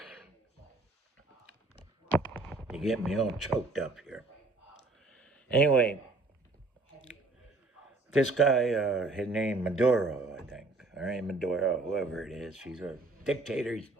You get me all choked up here. Anyway, this guy, his name Maduro, I think. All right, Maduro, whoever it is. He's a dictator. He's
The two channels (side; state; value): left; quieter; 3.4 dB